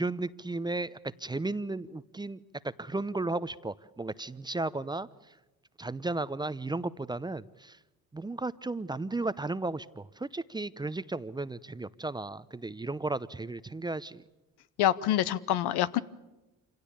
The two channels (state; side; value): normal; both; correlation 0.42